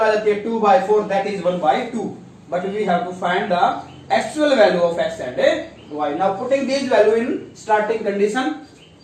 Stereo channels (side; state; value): both; identical; correlation 1.00